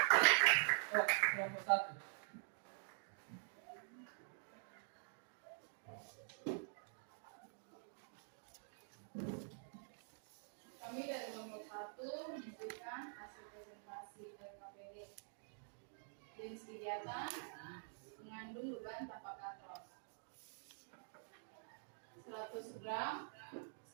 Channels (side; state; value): left; silent; digital silence